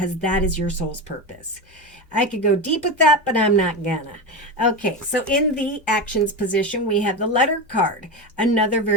that is your soul's purpose. I could go deep with that, but I'm not gonna. Okay, so in the actions position, we have the letter card, another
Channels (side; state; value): both; normal; correlation 0.19